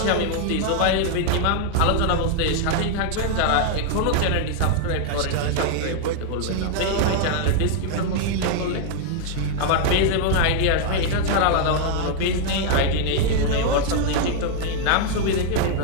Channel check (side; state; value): both; different; correlation 0.00